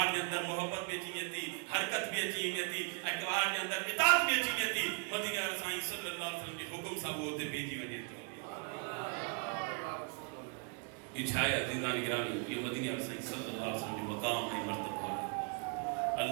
کے اندر محبت بھی اچھی تھی حرکت بھی اچھی تھی پہاڑ کے اندر اطاعت بھی اچھی تھی مدینہ رسائیں صلی اللہ علیہ وسلم کے حکم سب ہوتے بیجی وجہ تو یہ چھائے عزیزان گرامی یہ مدینہ رسائیں صلی اللہ علیہ وسلم جو مقام ہے مرتبہ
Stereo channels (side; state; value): left; quieter; 37.2 dB